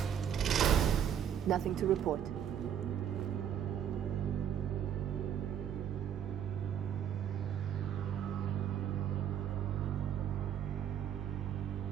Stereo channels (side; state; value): left; quieter; 9.3 dB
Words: Nothing to report.